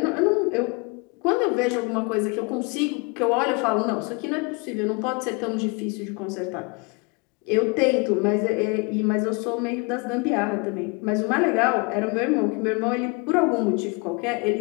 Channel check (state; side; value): quieter; right; 30.3 dB